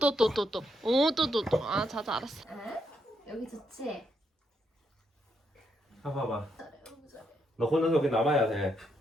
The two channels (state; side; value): normal; both; correlation 0.79